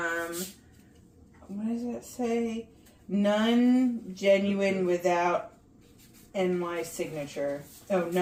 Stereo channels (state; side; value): identical; both; correlation 1.00